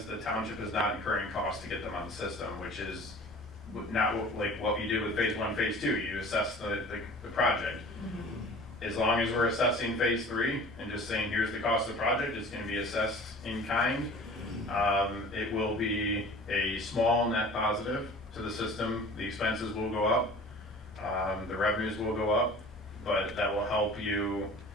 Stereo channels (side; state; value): both; normal; correlation 0.43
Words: the township is not incurring costs to get them on the system, which is not like what you did with phase 1, phase 2. You assess the project. As long as we're assessing phase 3 and just saying here's the cost of the project, it's going to be assessed in kind. It will be a small net positive to the system. The expenses will go up, the revenues will go up, but that will help you